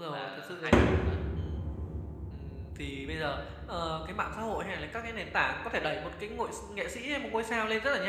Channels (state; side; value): identical; both; correlation 1.00